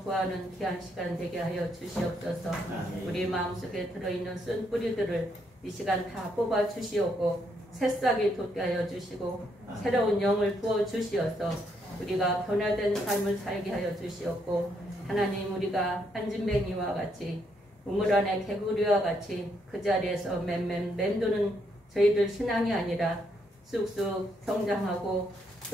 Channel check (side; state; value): both; normal; correlation 0.75